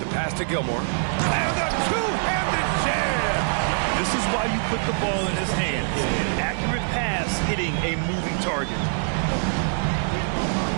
pass to Gilmore. And a two-handed jam! This is why you put the ball in his hands. An accurate pass hitting a moving target.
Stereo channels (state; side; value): silent; left; 62 dB below the other